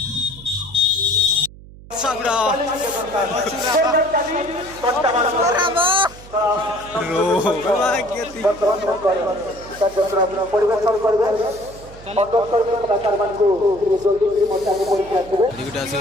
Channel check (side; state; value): right; noise; hum, 19 dB below the sound